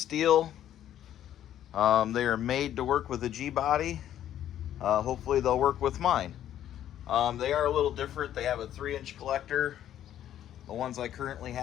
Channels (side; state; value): right; quieter; 11.3 dB